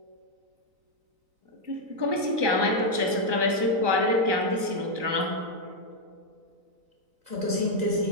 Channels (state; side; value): late; left; 3.9 ms